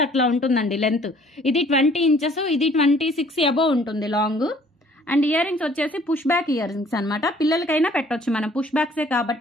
అట్లా ఉంటుందండి లెంత్. ఇది 20 ఇంచెస్, ఇది 26 అబోవ్ ఉంటుంది లాంగ్. అండ్ ఇయర్ రింగ్స్ వచ్చేసి పుష్ బ్యాక్ ఇయర్ రింగ్స్ అనమాట. పిల్లలకైనా పెట్టవచ్చు, మనం పుష్ బ్యాక్సే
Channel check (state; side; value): normal; both; correlation 0.57